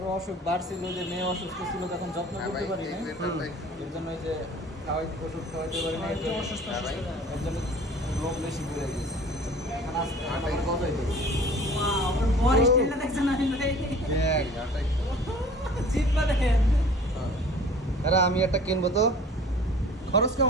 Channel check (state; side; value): normal; both; correlation 0.47